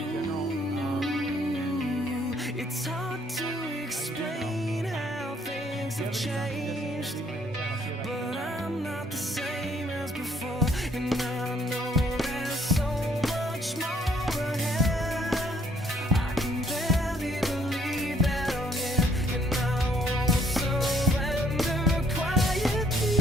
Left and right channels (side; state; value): both; normal; correlation 0.65